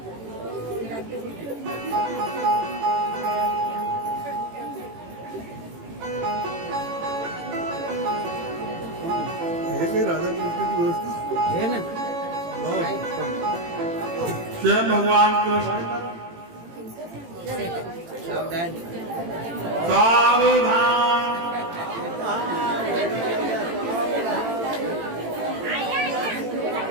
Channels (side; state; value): left; late; 18 ms